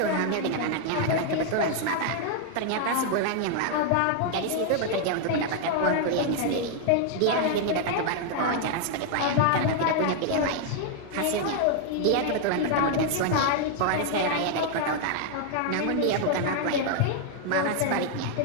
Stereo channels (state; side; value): different; both; correlation 0.00